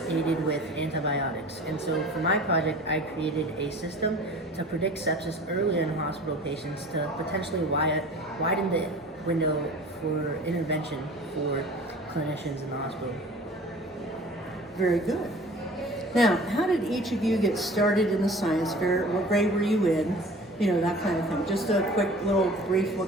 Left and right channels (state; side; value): normal; both; correlation 0.44